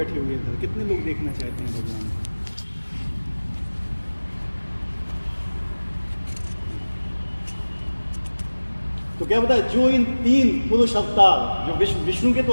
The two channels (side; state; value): both; inverted; correlation -1.00